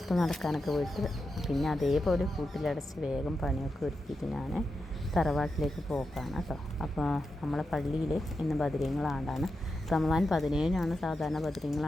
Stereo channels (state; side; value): normal; both; correlation 0.88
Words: നടക്കാനൊക്കെ പോയിട്ട് പിന്നെ അതേപോലെ കൂട്ടിലടച്ച് വേഗം പണിയൊക്കെ ഒരുക്കിയിട്ട് ഞാൻ തറവാട്ടിലേക്ക് പോക്കാണ് കേട്ടോ. അപ്പോൾ നമ്മളെ പള്ളിയിൽ ഇന്ന് ബദരീങ്ങളാണ്ടാണ്. റമദാൻ 17-നാണ് സാധാരണ